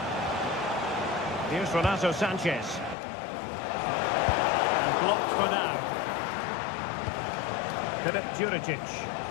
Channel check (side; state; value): right; drops out; at 3.0 s